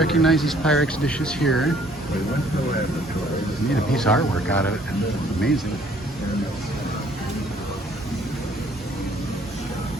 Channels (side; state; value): both; normal; correlation 0.60